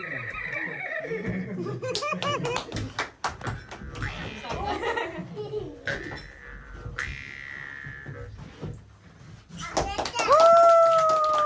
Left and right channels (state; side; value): identical; both; correlation 1.00